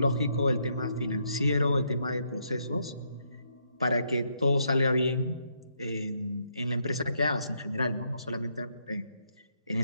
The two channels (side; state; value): both; inverted; correlation -0.76